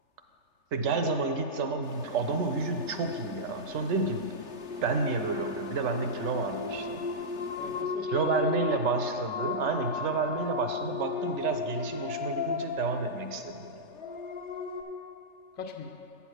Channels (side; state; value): left; late; 3.3 ms